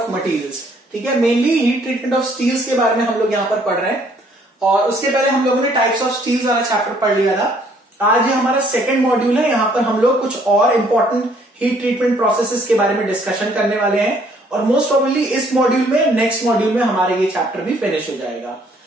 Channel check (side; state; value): both; normal; correlation 0.63